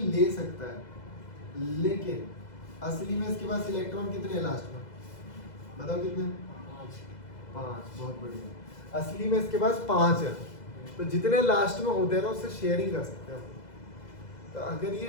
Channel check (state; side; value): late; right; 2.0 ms